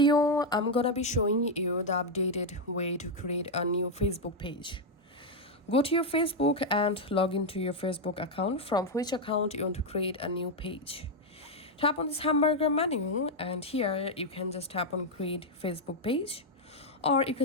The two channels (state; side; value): normal; both; correlation 0.01